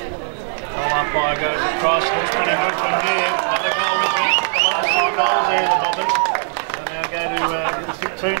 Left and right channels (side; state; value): left; silent; 66 dB below the other